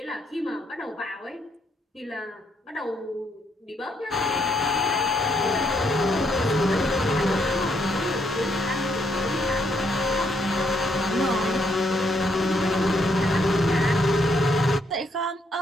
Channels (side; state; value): both; normal; correlation 0.74